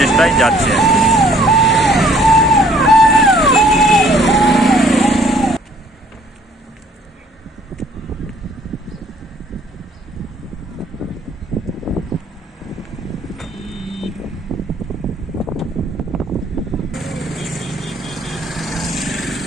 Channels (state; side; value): normal; both; correlation 0.59